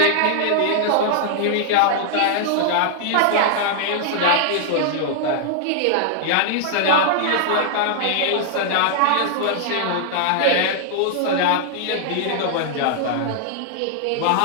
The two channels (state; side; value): different; both; correlation -0.01